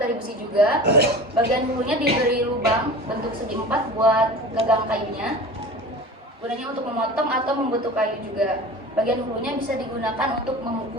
besi juga. Bagian hulunya diberi lubang bentuk segi 4 buat gagang kayunya. Gunanya untuk memotong atau membentuk kayu juga. Bagian hulunya bisa digunakan untuk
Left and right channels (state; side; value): normal; both; correlation 0.36